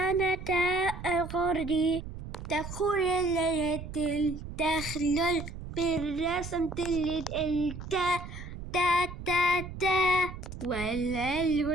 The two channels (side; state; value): right; noise; rumble, 10 dB below the sound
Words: تاء غردي تخر الليل تخلل بالرسم تلد التاء تا تا تا